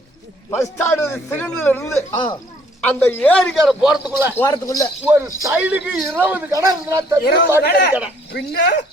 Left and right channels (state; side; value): normal; both; correlation 0.62